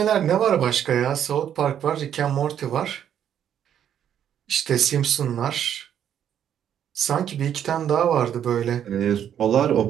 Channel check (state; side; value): quieter; left; 9.6 dB